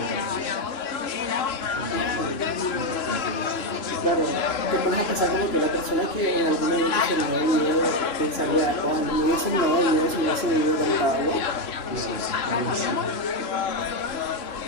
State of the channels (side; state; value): right; late; 3.0 ms